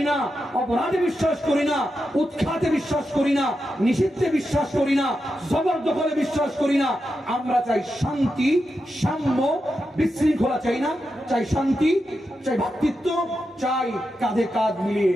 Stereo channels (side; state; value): both; normal; correlation 0.88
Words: না, অপরাধে বিশ্বাস করি না, উৎখাতে বিশ্বাস করি না, নিষিদ্ধে বিশ্বাস করি না, জবরদখলে বিশ্বাস করি না। আমরা চাই শান্তি, সাম্য, বিশৃঙ্খলা চাই না, চাই শান্তি, চাই ভ্রাতৃত্ব, চাই কাঁধে কাঁধ মিলিয়ে,